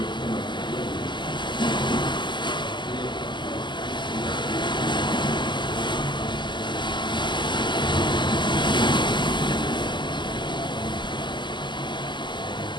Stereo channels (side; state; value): right; late; 0.22 ms